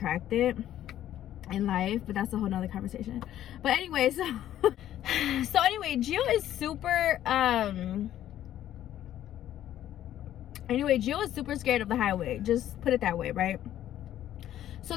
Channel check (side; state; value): right; quieter; 12.1 dB